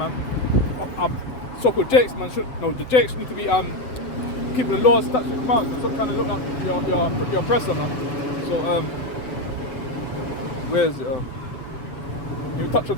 So-called Jakes, man. The Jakes need to be keeping the laws, statutes, and commands. Stop trying to look like your oppressor, man. So where's it? We touch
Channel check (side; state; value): right; late; 7.9 ms